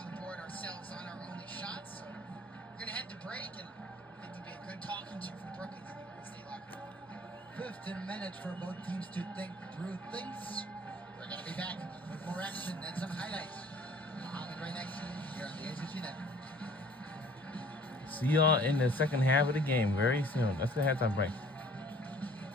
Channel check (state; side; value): normal; both; correlation 0.52